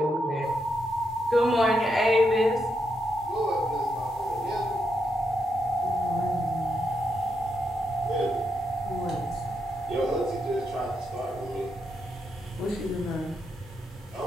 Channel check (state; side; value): normal; both; correlation 0.82